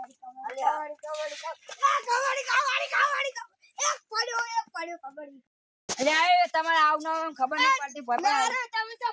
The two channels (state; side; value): identical; both; correlation 1.00